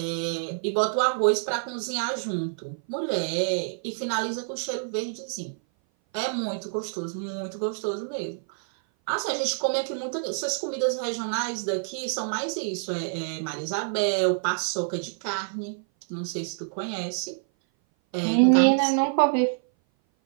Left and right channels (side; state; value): left; silent; 57 dB below the other